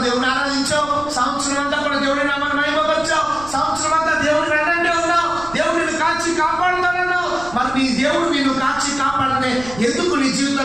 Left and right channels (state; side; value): noise; right; rumble, 16 dB below the sound